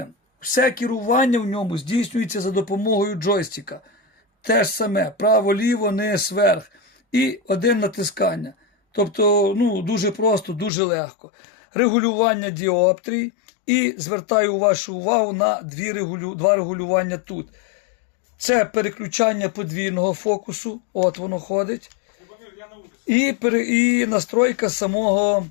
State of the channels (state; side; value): drops out; right; at 10.7 s